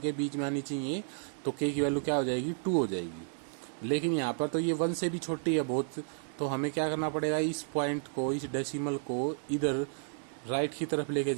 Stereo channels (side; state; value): left; silent; digital silence